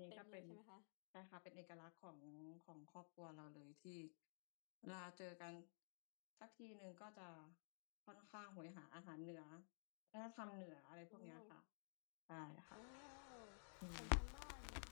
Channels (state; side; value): silent; right; digital silence